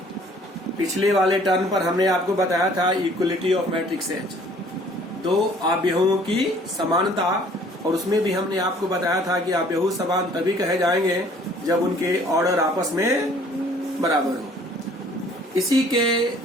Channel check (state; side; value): normal; both; correlation 0.56